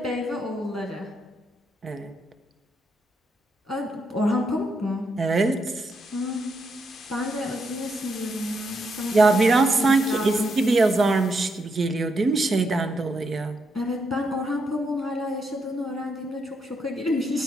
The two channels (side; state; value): both; normal; correlation 0.79